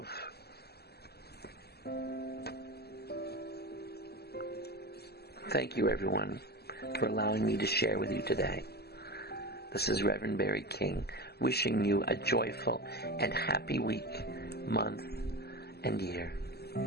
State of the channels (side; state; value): right; late; 0.46 ms